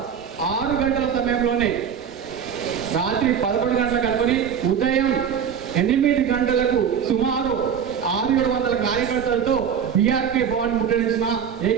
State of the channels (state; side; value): quieter; left; 7.7 dB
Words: 6 గంటల సమయంలోనే రాత్రి 11 గంటలకు అనుకుని ఉదయం 8 గంటలకు సుమారు 600-700 కార్యకర్తలతో బీఆర్కే భవన్ ముట్టడించిన